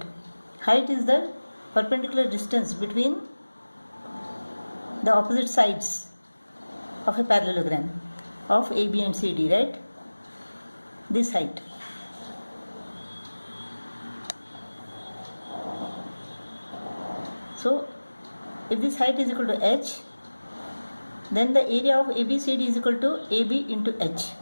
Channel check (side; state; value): both; inverted; correlation -1.00